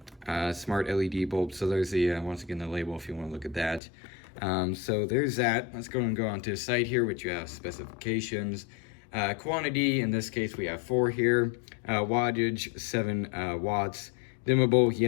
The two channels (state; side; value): drops out; right; at 3.8 s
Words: Smart LED bulb. So there's the, once again, the label if you want to look at that. So there's that. Let's go on to the site here, which you have specifications. Quantity, in this case, we have 4 here. Wattage, 7 watts. Dimmable,